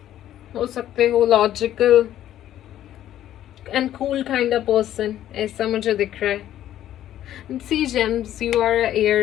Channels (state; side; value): quieter; right; 12.1 dB